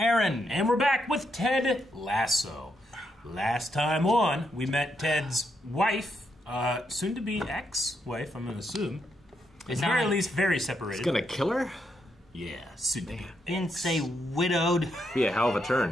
And we're back with Ted Lasso. Last time on, we met Ted's wife, soon to be ex-wife, I'm gonna assume. It's very, at least very separated. He's gonna kill her? Yeah, soon to be. Didn't say widowed. Be a hell of a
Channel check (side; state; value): both; normal; correlation 0.79